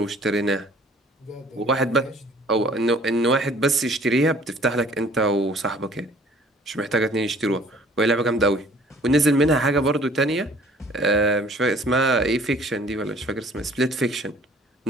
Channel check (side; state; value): both; normal; correlation 0.54